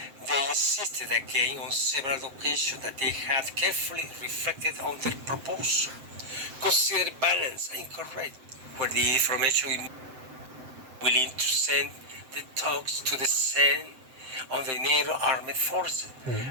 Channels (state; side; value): late; left; 7.8 ms